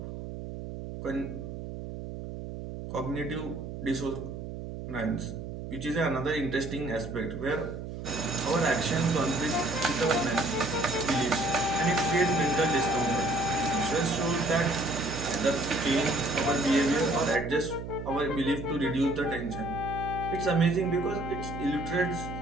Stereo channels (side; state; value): right; noise; hum, 8 dB below the sound